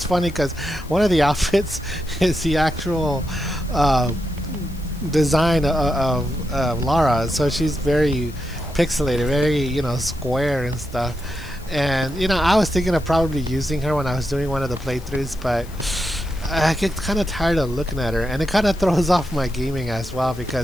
funny because one of the outfits is the actual design of Lara, so she's very pixelated, very square and stuff. And I was thinking of probably using her when I was doing one of the playthroughs, but I get kind of tired of looking at her, and it kind of throws off my gaming as well,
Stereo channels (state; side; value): noise; left; hiss, 22 dB below the sound